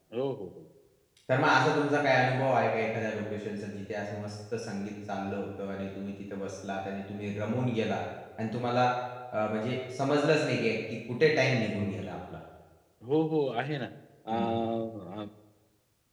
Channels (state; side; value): identical; both; correlation 1.00